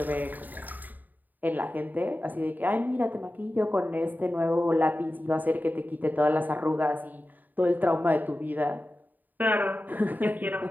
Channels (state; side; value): late; left; 0.086 ms